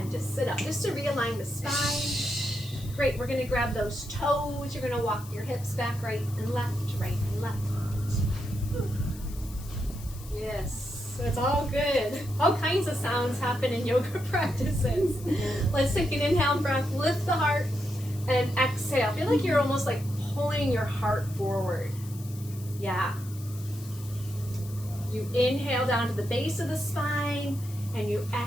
just sit up, just to realign the spine. Great, we're gonna grab those toes. You're gonna walk your hips back, right and left, right and left. Yes, it's all good. All kinds of sounds happen in yoga practices. Let's take an inhale breath, lift the heart, and exhale. Feel like you're almost like pulling your heart forward. Yeah. You inhale down to the base of the spine, and you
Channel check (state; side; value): noise; left; hiss, 18 dB below the sound